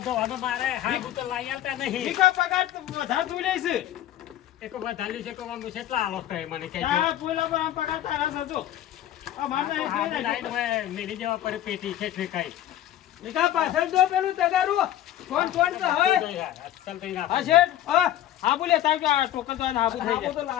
ધોવાનો મારે હાગું તો લાઈ આવતા નહીં એક વધાર્યું છે કે હું કેટલા આલો કહે મને કહેજો લાઈન માં મેરી જવા પડે પેટી છે એટલે કઈ પાછળ જો પેલું તગારું કોણ કોણ તો હોય ચાલ કઈ ના હા શેઠ હા બોલે તાર કે આ ટોકન તો હાબુ થઈ આવો તો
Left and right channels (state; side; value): quieter; right; 12.5 dB